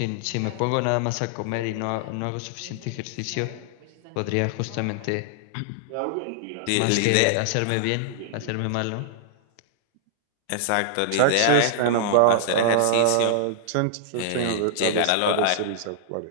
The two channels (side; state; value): both; different; correlation -0.01